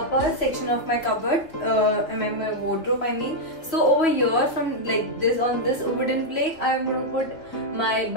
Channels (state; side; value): late; right; 2.7 ms